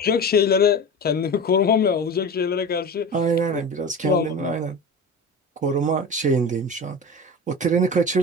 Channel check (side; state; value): both; normal; correlation 0.30